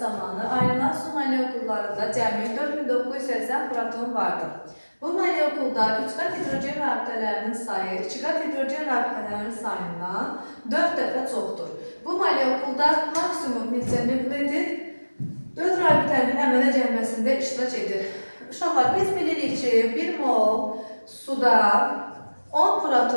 zamanı ayrılan su molekullarında cəmi 4980 proton vardır. Bu molekulda 3 qat hidrogen rabitələrinin sayı 2 qat hidrogen rabitələrinin sayından 4 dəfə çoxdur. Bu molekulda maksimum neçə nükleotid 4 rabitənin əmələ gəlməsində iştirak edir. Uşaqlar, biz bilirik ki, 1 mol suda 10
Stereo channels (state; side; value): inverted; both; correlation -1.00